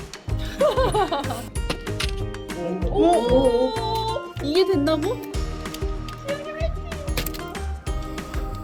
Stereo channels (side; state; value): both; identical; correlation 1.00